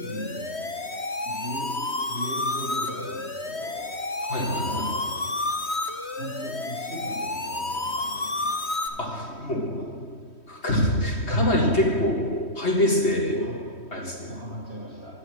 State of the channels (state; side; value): late; right; 3.1 ms